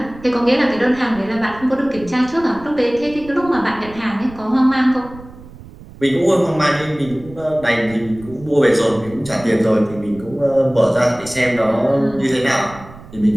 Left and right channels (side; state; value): right; noise; rumble, 18 dB below the sound